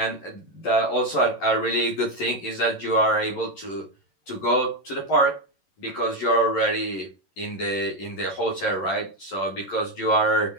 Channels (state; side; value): late; right; 11 ms